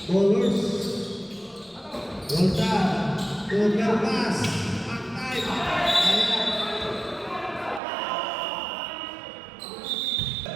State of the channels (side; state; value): left; drops out; at 7.8 s